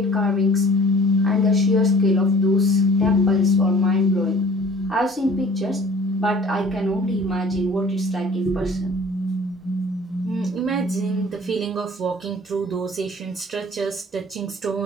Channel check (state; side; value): normal; both; correlation 0.49